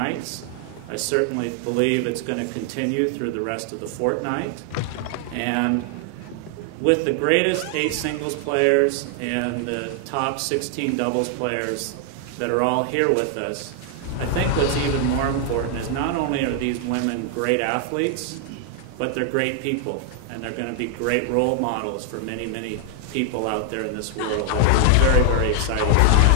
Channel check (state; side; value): different; both; correlation 0.00